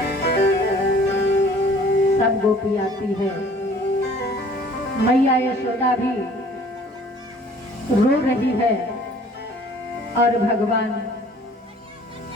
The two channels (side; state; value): both; normal; correlation 0.53